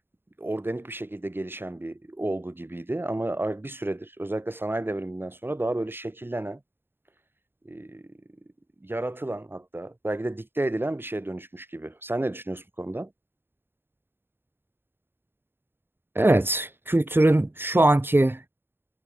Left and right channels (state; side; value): late; left; 0.10 ms